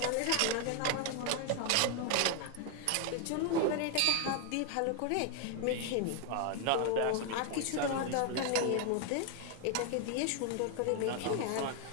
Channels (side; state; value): both; different; correlation 0.01